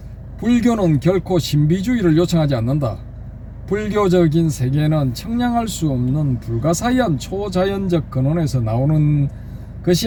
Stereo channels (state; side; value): identical; both; correlation 1.00